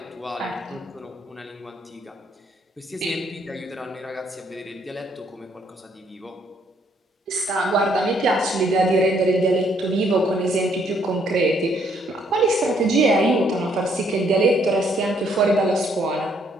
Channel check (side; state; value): both; normal; correlation 0.68